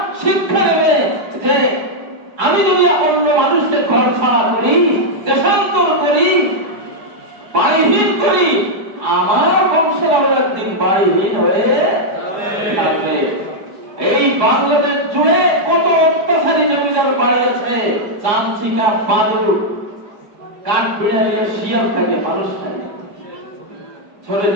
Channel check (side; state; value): left; late; 4.8 ms